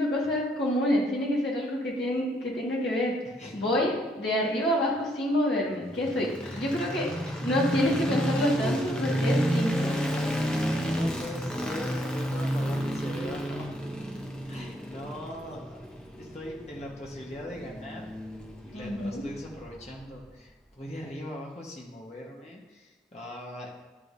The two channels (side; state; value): both; normal; correlation 0.70